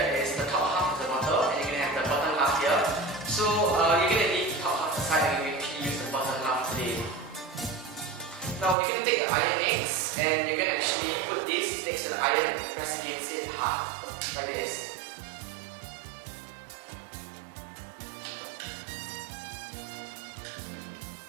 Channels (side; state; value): left; drops out; at 8.8 s